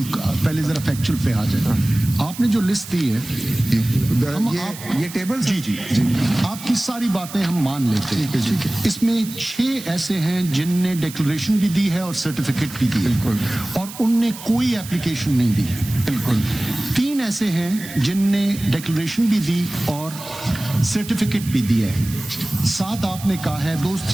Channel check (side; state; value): right; noise; hiss, 14 dB below the sound